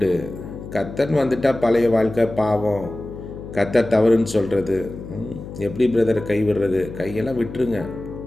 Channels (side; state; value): left; noise; hum, 12 dB below the sound